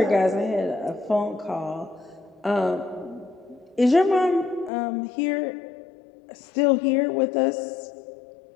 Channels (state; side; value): drops out; right; at 4.7 s